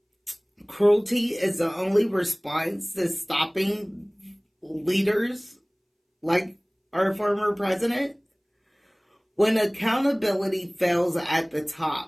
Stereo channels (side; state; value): both; identical; correlation 1.00